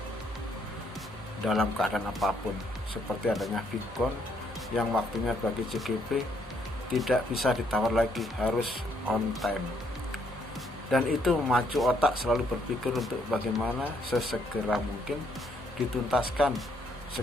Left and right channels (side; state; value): both; normal; correlation 0.71